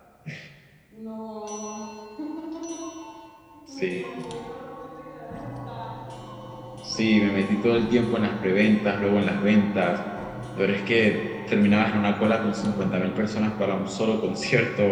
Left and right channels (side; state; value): both; identical; correlation 1.00